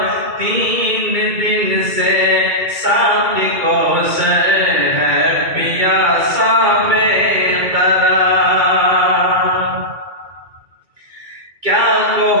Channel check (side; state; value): left; late; 2.3 ms